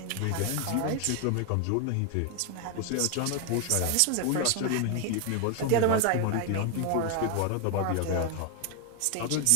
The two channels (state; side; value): different; both; correlation 0.01